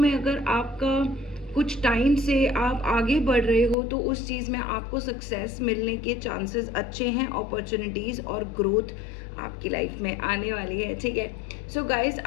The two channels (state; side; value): drops out; right; at 3.8 s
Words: अगर आपका कुछ टाइम से आप आगे बढ़ रहे हो तो उस चीज़ में आपको सक्सेस मिलने के चांसेस अच्छे हैं, अपॉर्चुनिटीज़ और ग्रोथ आपकी लाइफ में आने वाली है। ठीक है, सो गाइज